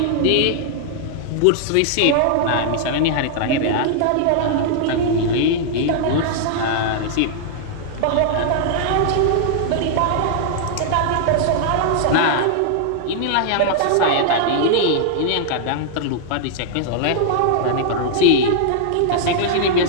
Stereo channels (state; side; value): different; both; correlation -0.01